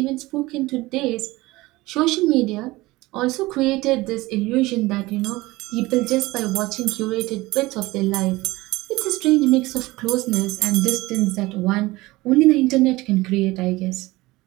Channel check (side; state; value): left; quieter; 20.1 dB